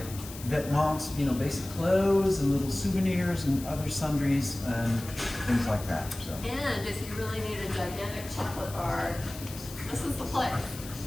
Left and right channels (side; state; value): left; noise; hiss, 14 dB below the sound